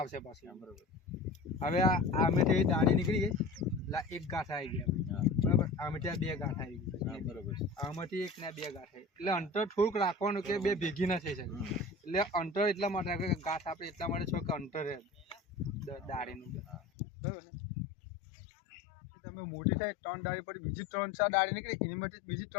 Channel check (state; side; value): drops out; right; at 16.8 s